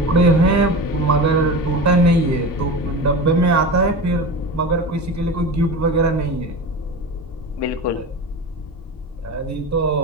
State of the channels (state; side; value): normal; both; correlation 0.28